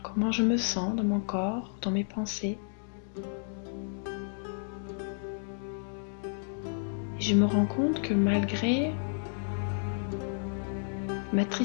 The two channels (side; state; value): right; silent; digital silence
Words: comment je me sens dans mon corps, dans mes pensées. Et je me rends compte que malgré ma